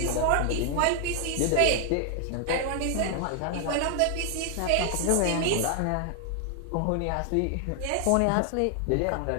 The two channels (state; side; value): different; both; correlation 0.00